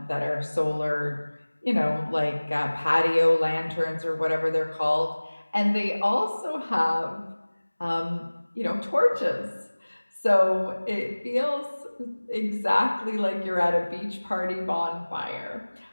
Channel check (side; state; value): both; inverted; correlation -1.00